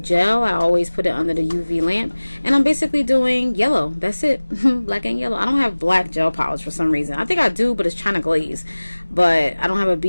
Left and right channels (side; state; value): both; inverted; correlation -1.00